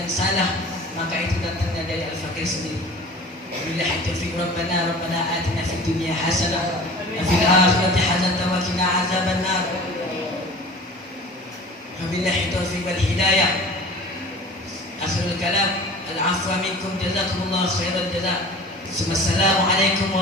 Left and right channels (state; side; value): normal; both; correlation 0.40